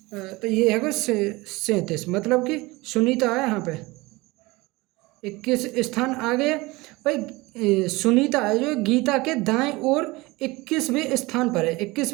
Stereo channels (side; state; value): left; quieter; 22.3 dB